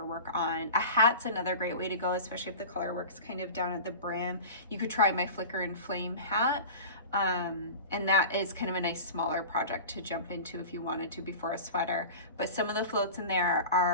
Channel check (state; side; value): inverted; both; correlation -0.33